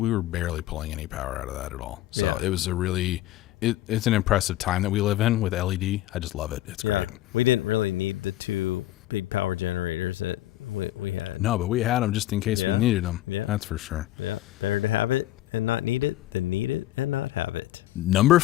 barely pulling any power out of that at all. So it was it's an impressive time that we live in with LED. I just love it. It's great. We didn't really need the 2 big power generators that we had. No, but we had them just in case we needed them. Yeah. That's for sure. Yeah. Better to have it and not need it than need it and not have it. Number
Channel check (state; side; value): quieter; right; 15.0 dB